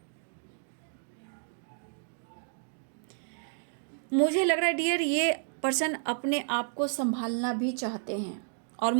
मुझे लग रहा है डियर ये पर्सन अपने आप को संभालना भी चाहते हैं, और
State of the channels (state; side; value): silent; left; digital silence